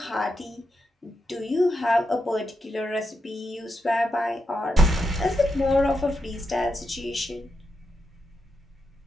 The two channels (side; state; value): both; normal; correlation 0.85